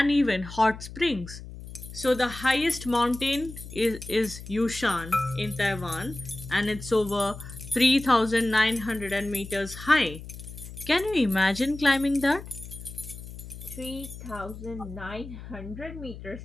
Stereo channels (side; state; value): left; noise; hum, 13 dB below the sound